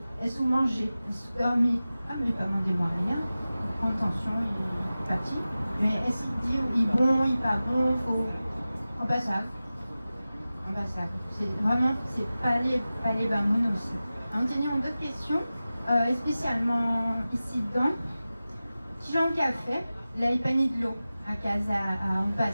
Est-ce que vous mangez? Est-ce que vous dormez? Ah, mais pas demandé moi rien. Il prend attention, il est parti. Mais est-ce qu'il dit, il est bon, il n'est pas bon, faut. On passe ça. C'est vraiment, c'est pas les bamoun aussi. On tenait d'autres questions. Spécialement ici dedans, qui j'en a fait, là il pas ni de l'eau à un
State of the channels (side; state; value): both; inverted; correlation -0.96